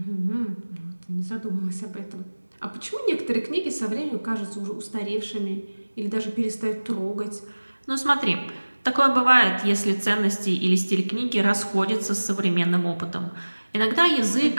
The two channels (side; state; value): both; inverted; correlation -1.00